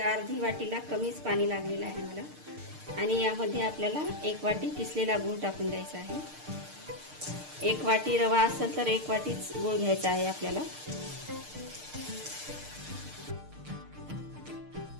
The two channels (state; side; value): late; left; 6.6 ms